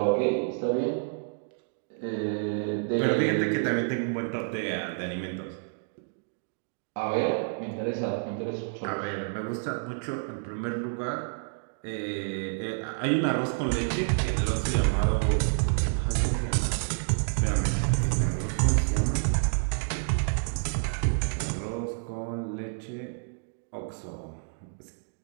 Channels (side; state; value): left; silent; digital silence